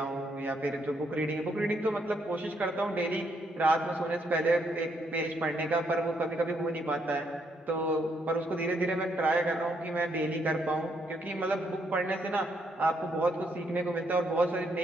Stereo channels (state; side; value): normal; both; correlation 0.74